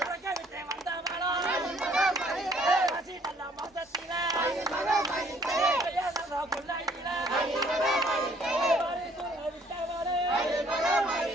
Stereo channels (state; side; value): normal; both; correlation 0.61